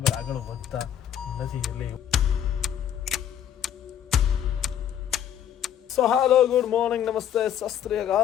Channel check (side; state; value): right; quieter; 9.8 dB